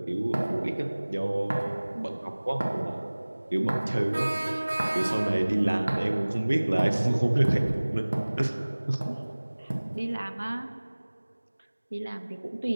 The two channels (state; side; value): inverted; both; correlation -1.00